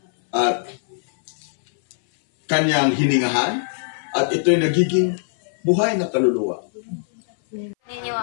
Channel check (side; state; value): right; silent; 59 dB below the other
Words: at kanyang hiningahan at ito'y nagiging buhay na kaluluwa. Ninyo